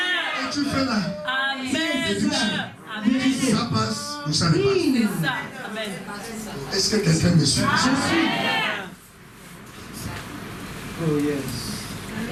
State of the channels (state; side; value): identical; both; correlation 1.00